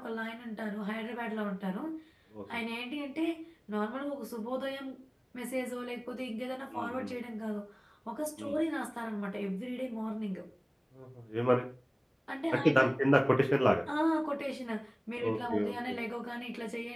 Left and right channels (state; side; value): identical; both; correlation 1.00